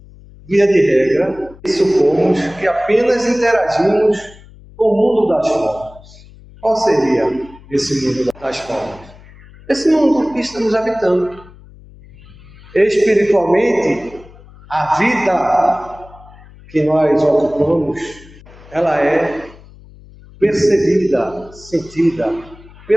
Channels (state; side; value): noise; left; hum, 22 dB below the sound